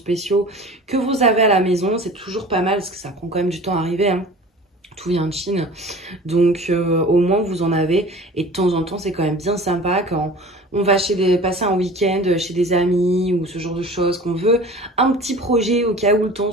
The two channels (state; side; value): normal; both; correlation 0.41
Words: que vous avez à la maison. C'est toujours pas mal parce que ça prend quand même du temps à arriver, hein. Tout vient de Chine, donc au moins vous en avez. Et de temps en temps c'est quand même bien sympa quand on va passer un week-end chez des amis ou ce genre de choses, qu'on veut un petit projet au cas où le temps